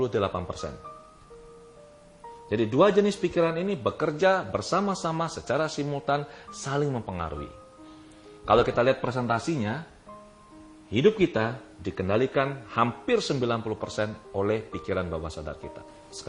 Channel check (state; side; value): identical; both; correlation 1.00